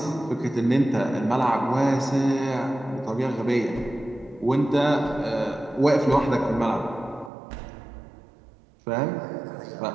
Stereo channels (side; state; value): left; drops out; at 7.3 s